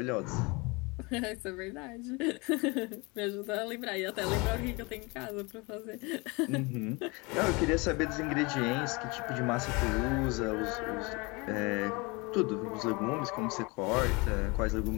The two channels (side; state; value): right; quieter; 26.9 dB